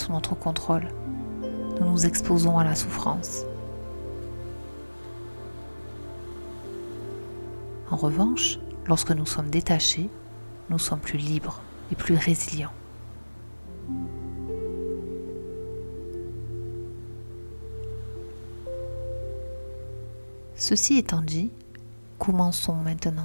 notre contrôle, nous nous exposons à la souffrance. En revanche, lorsque nous sommes détachés, nous sommes plus libres et plus résilients. Ceci étant dit, commençons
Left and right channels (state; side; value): inverted; both; correlation -1.00